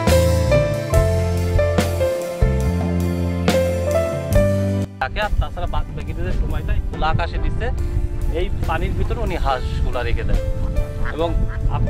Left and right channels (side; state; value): both; identical; correlation 1.00